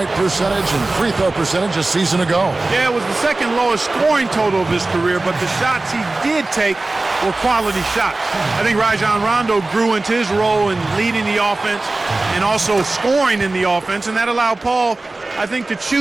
percentage, and free throw percentage a season ago. Yeah, it was the second lowest scoring total of his career, but the shots he did take were quality shots. I think Rajon Rondo grew into his role in leading the offense and also scoring in the offense, and that allowed Paul, I think, to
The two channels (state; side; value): quieter; left; 3.1 dB